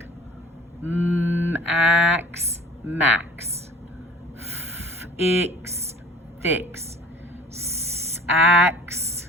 Ax, max. Ix, fix. Sax,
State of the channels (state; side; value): normal; both; correlation 0.48